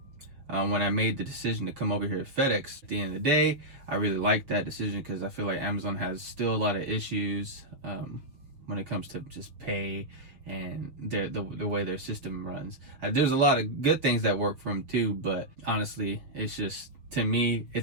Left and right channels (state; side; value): late; left; 6.5 ms